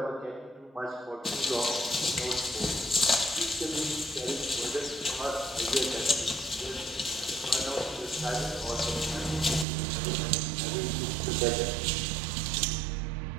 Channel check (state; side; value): drops out; left; at 9.7 s